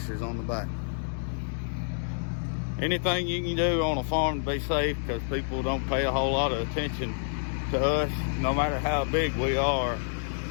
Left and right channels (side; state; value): right; silent; digital silence